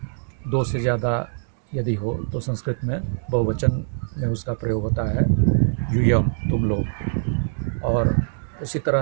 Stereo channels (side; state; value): left; silent; digital silence